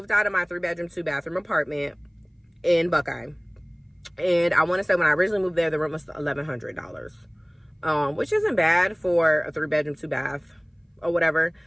out of my 3-bedroom 2-bathroom apartment in Buckeye. And I want to say when I originally moved there, the rent was $1,100, which isn't bad for a 3-bedroom 2-bath or whatever.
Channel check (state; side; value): identical; both; correlation 1.00